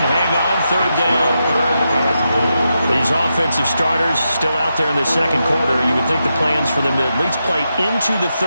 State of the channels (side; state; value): both; inverted; correlation -0.86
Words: hang on, 3rd down. These offensive starters still out there in the 2nd quarter. You would think the plans for them to at least play into the